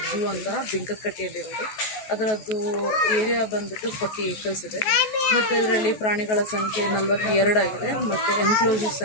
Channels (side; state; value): right; late; 14 ms